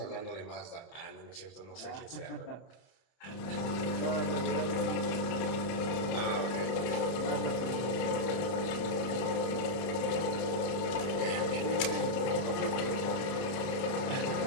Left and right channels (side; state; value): right; late; 31 ms